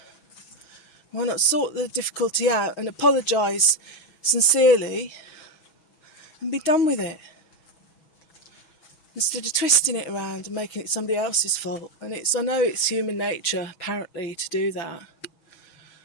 Why not sort the difficulty out and apologise sincerely and be done with it, instead of twisting it around and making it somebody else's fault? And I know it's human nature, apparently, to do that.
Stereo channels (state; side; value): late; right; 6.0 ms